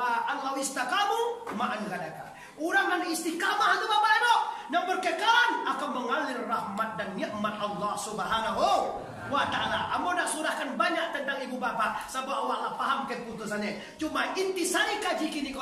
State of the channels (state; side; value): identical; both; correlation 1.00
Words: Allah istaqamu ma'an gadaka. Orang yang istiqamah itu Bapak Ibu, yang berkekalan akan mengalir rahmat dan nikmat Allah Subhanahu wa ta'ala. Amo nak surahkan banyak tentang ibu bapak sebab awak paham keputusannya. Cuma intisari kaji kini